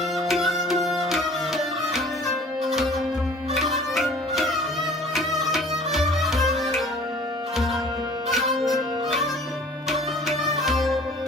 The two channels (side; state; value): both; normal; correlation 0.48